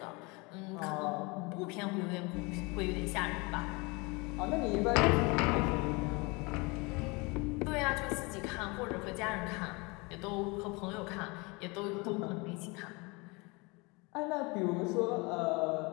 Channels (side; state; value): right; quieter; 27.2 dB